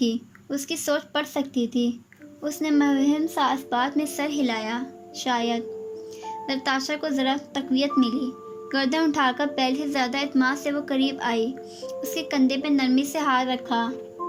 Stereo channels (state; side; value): identical; both; correlation 1.00